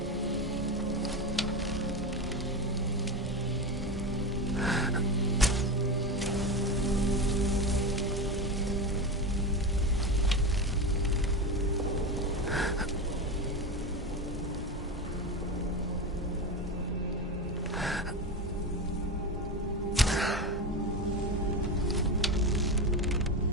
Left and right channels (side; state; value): both; normal; correlation 0.20